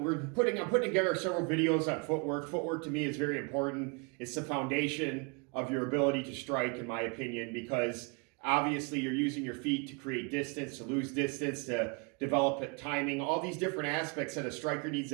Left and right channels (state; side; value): quieter; left; 32.9 dB